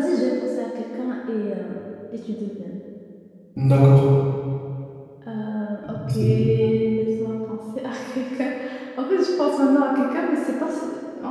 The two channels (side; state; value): both; identical; correlation 1.00